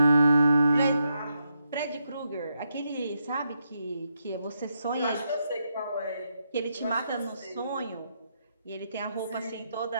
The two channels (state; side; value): inverted; both; correlation -0.82